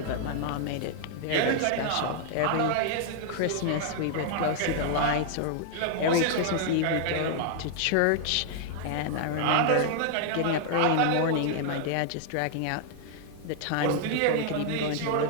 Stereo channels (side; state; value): both; different; correlation 0.00